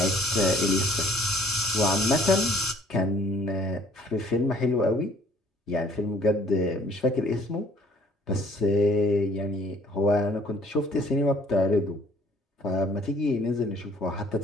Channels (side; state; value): both; normal; correlation 0.57